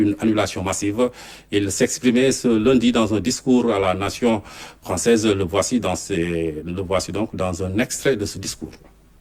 annulation massive. Il s'exprimait ce lundi dans un discours à la nation française. Le voici donc dans un extrait de ce discours.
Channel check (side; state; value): both; identical; correlation 1.00